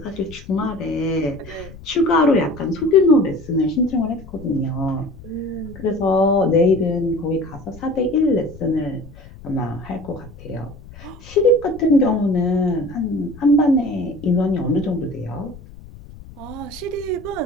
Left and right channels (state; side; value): noise; left; rumble, 18 dB below the sound